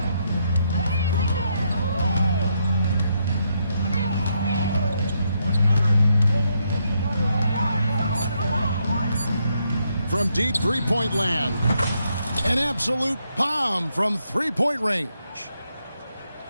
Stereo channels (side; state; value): both; inverted; correlation -0.77